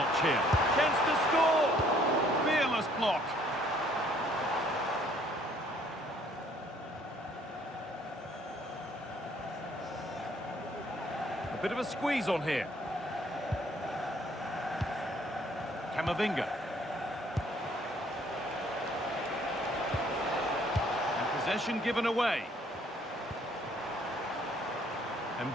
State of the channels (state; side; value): normal; both; correlation 0.62